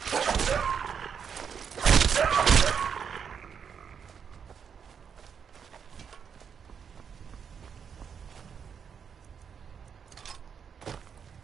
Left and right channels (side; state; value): left; quieter; 7.1 dB